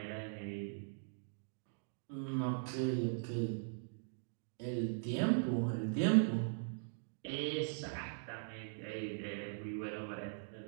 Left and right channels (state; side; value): silent; left; digital silence